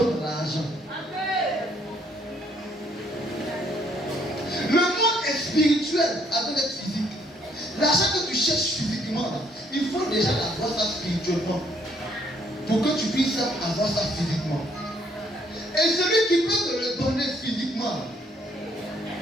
l'argent. Le monde est spirituel avant d'être physique. L'argent que tu cherches physiquement, il faut déjà avoir ça spirituellement. Pour que tu puisses avoir ça physiquement. Et celui qui peut te le donner physiquement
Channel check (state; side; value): normal; both; correlation 0.67